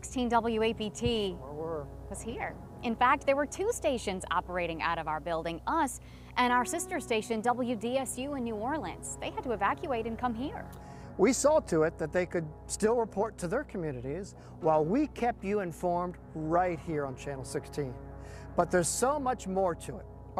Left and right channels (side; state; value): both; identical; correlation 1.00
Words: WAPT was here. In fact, there were two stations operating out of our building, us and our sister station, WDSU in New Orleans. They had to evacuate and come here. We saw to it that they could still report to their communities while we kept you informed right here on Channel 16. But there's so much more to it.